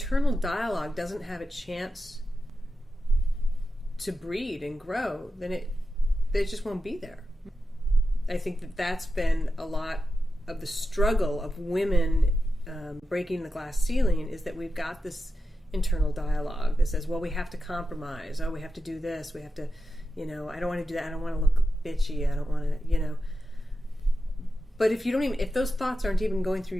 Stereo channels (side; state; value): both; normal; correlation 0.90